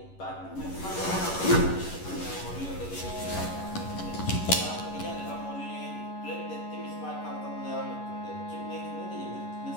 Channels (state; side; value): late; right; 11 ms